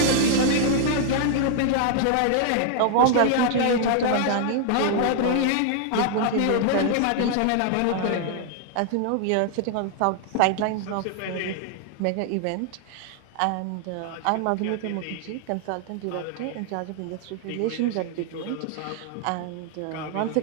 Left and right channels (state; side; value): different; both; correlation 0.00